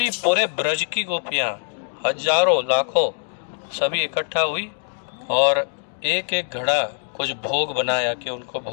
पूरे ब्रज की गोपियाँ, हजारों लाखों, सभी इकट्ठा हुई और एक एक घड़ा कुछ भोग बनाया कि उनको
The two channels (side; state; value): right; silent; 64 dB below the other